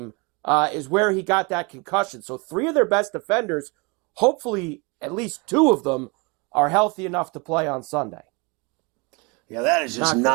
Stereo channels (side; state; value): left; quieter; 28.6 dB